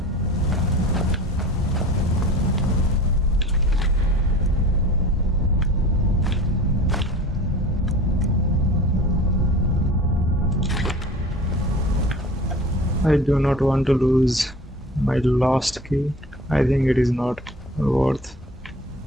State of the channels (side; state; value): both; normal; correlation 0.41